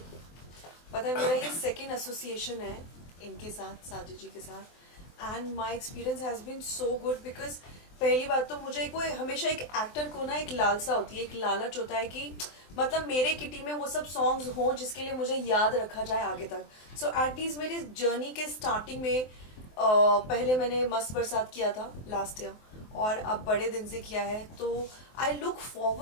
पता है मेरा ये सेकंड एसोसिएशन है इनके साथ, साजिद जी के साथ, and my experience has been so good. Because पहली बात तो मुझे कोई हमेशा एक एक्टर को ना एक लालसा होती है, एक लालच होता है कि मतलब मेरे किटी में वो सब सॉन्ग्स हों जिसके लिए मुझे याद रखा जाए आगे तक। सो एटलीस्ट मेरी जर्नी के स्टार्टिंग में पहले मैंने मस्त बरसात किया था लास्ट ईयर, और अब बड़े दिन से किया है। तो आई लुक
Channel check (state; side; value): late; right; 23 ms